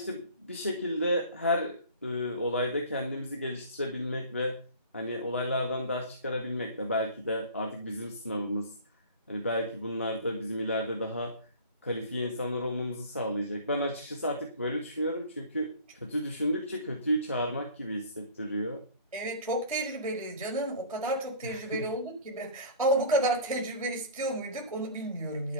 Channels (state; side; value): inverted; both; correlation -0.42